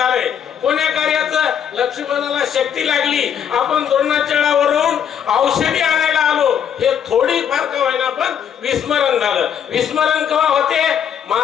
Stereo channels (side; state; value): right; quieter; 8.5 dB